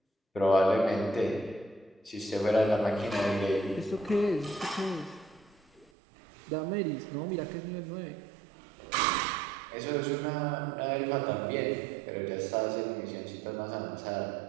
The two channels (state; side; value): drops out; left; at 5.9 s